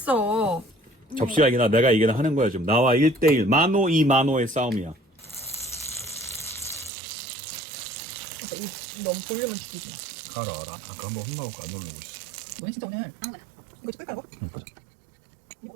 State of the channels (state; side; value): drops out; left; at 6.9 s